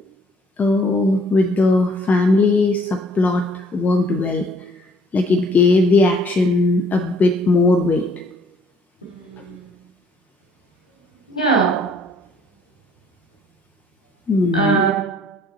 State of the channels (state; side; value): normal; both; correlation 0.61